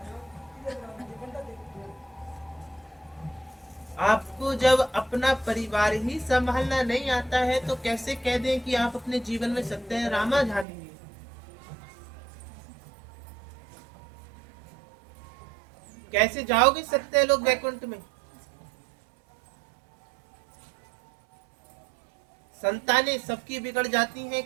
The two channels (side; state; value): left; drops out; at 10.7 s